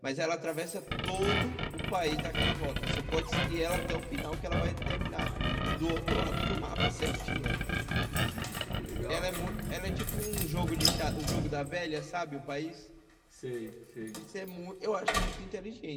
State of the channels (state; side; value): identical; both; correlation 1.00